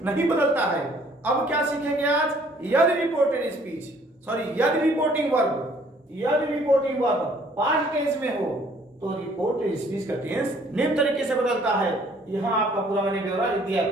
नहीं बदलता है। अब क्या सीखेंगे आज? यदि रिपोर्टेड स्पीच यदि रिपोर्टिंग वर्ब पास्ट टेंस में हो तो रिपोर्टेड स्पीच का टेंस निम्न तरीके से बदलता है। यहाँ आपका पूरा मैंने ब्यौरा लिख दिया।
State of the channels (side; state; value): both; normal; correlation 0.59